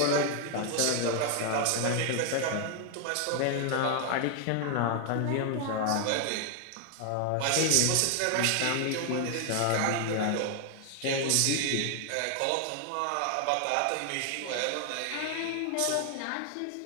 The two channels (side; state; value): both; different; correlation 0.00